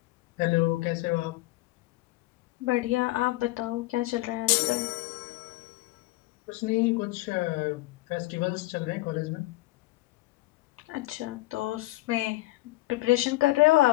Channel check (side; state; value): right; quieter; 19.5 dB